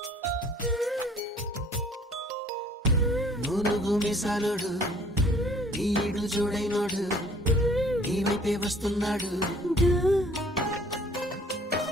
నూనుగు మిసాలుడు ఈడు జోడైనోడు నీ వైపే వస్తున్నాడు,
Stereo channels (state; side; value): normal; both; correlation 0.55